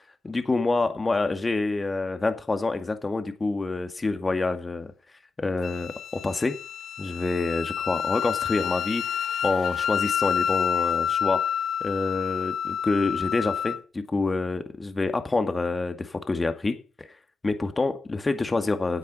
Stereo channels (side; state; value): right; quieter; 4.0 dB